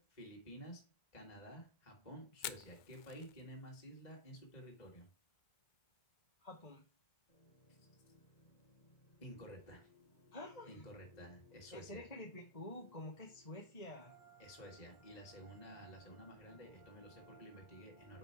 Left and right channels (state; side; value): late; right; 2.1 ms